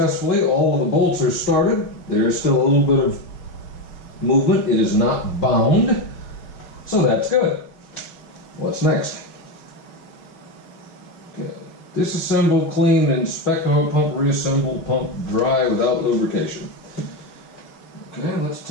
All of the bolts are started. There is still a little bit of movement. It is not bound, so that's good. What's next? Okay. Disassemble, clean, inspect oil pump, reassemble pump dry without lubrication. Okay, let's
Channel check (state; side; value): late; right; 5.7 ms